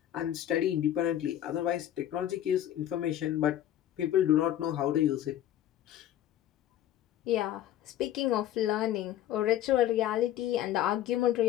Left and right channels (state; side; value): quieter; right; 12.0 dB